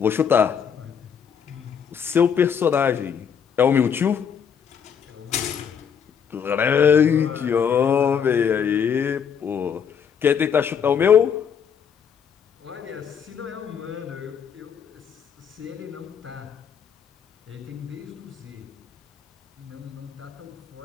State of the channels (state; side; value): quieter; right; 7.4 dB